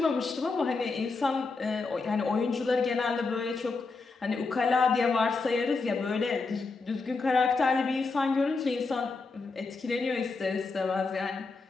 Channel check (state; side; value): quieter; right; 4.1 dB